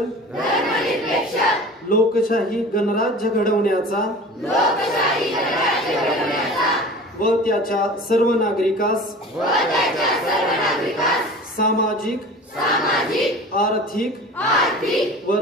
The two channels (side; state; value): both; normal; correlation 0.39